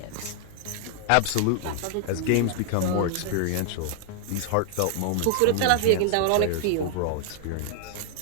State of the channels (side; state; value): both; different; correlation 0.00